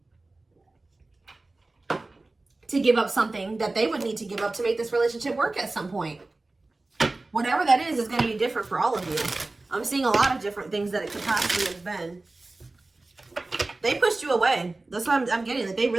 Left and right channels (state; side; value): quieter; left; 3.1 dB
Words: to give up something that they would need to give up to make this relationship work at some point. Whatever that is going to be different for all of you. I'm seeing a lot of different things that it could possibly have been. They pushed you away. That's what I'm getting. That they